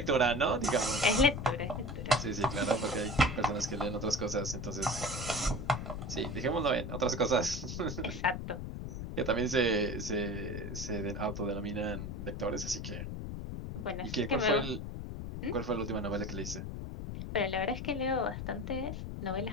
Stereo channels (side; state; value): left; noise; rumble, 6 dB below the sound